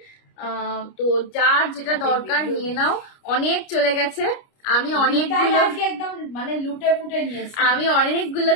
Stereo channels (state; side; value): late; right; 29 ms